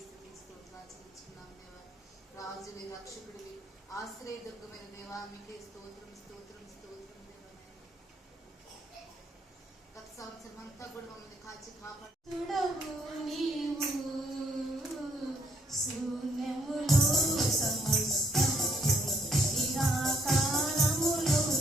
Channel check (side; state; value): both; normal; correlation 0.70